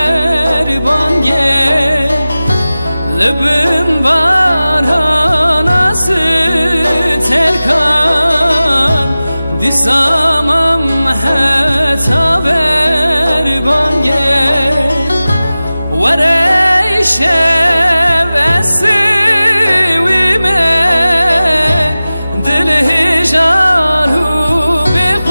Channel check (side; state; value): both; inverted; correlation -0.97